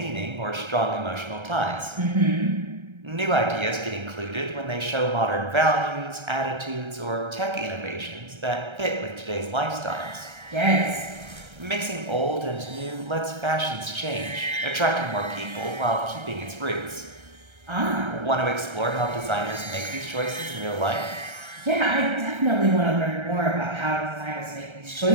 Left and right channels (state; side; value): late; left; 1.3 ms